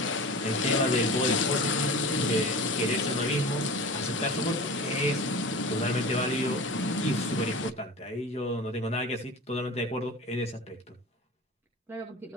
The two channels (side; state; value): both; normal; correlation 0.35